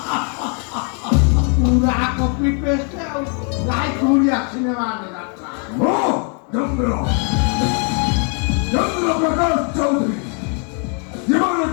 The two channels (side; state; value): right; quieter; 39.5 dB